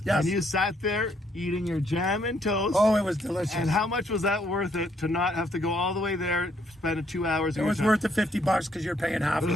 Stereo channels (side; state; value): both; normal; correlation 0.70